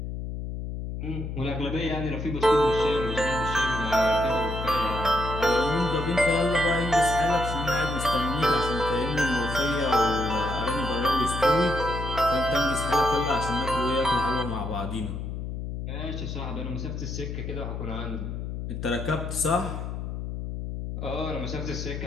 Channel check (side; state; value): left; noise; hum, 5 dB below the sound